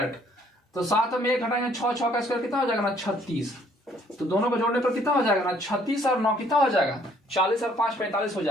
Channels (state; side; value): normal; both; correlation 0.63